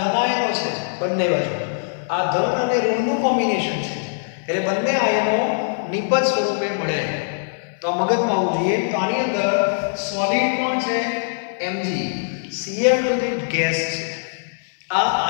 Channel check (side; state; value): right; silent; digital silence